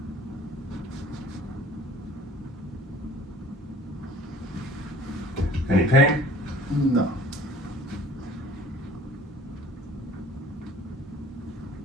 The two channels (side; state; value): both; normal; correlation 0.50